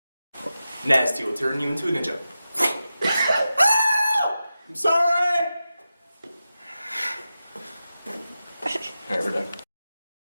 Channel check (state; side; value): inverted; both; correlation -0.92